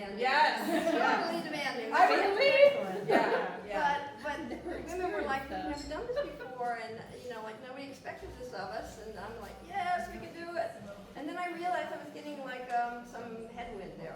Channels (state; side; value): identical; both; correlation 1.00